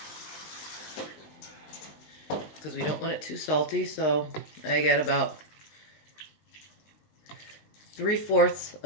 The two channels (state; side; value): late; right; 20 ms